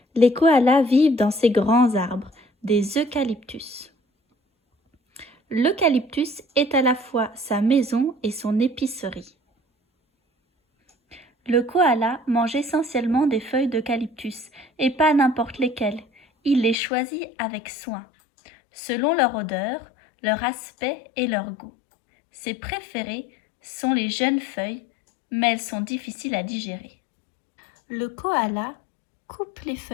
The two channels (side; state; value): right; drops out; at 16.8 s